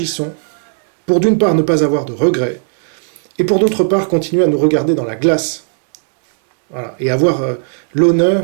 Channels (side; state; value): left; silent; digital silence